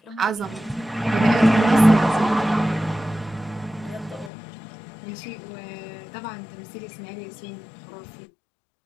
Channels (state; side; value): drops out; right; at 4.3 s